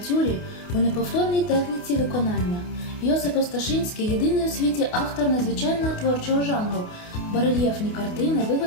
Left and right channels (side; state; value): right; late; 28 ms